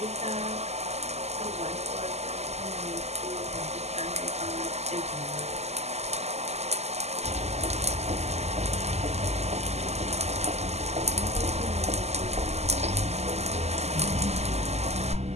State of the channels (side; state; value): left; late; 0.31 ms